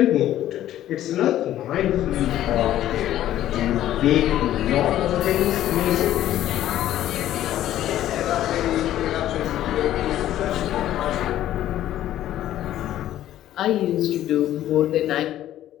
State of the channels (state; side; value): quieter; right; 12.8 dB